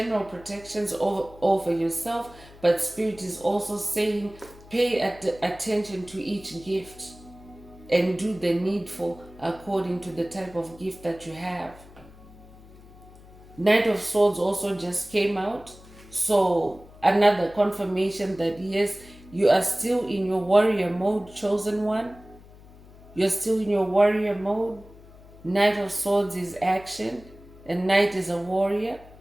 protections over yourself, but Spirit is also saying pay attention to each gift and do the needful according to the type of gift that you have. Knight of Swords also just came out, so another confirmation that yes, you are still in your warrior mode, chosen one. You're still in your warrior mode. Knight of Swords is action, and Knight is a warrior,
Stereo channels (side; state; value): left; noise; hum, 21 dB below the sound